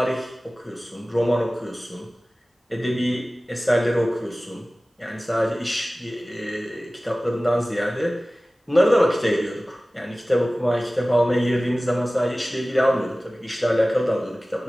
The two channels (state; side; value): normal; both; correlation 0.97